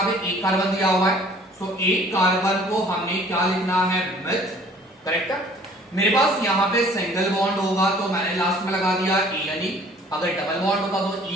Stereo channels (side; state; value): both; normal; correlation 0.53